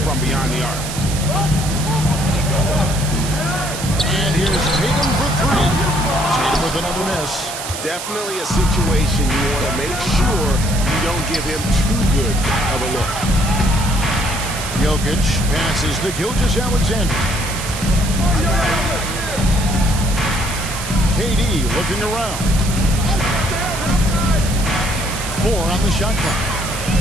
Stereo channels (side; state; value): right; noise; hiss, 8 dB below the sound